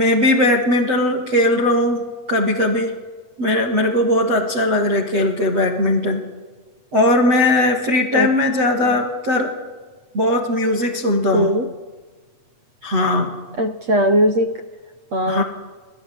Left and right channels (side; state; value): left; late; 8.3 ms